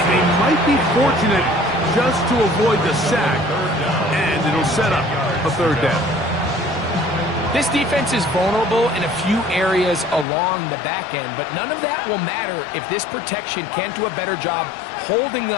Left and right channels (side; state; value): right; drops out; at 10.2 s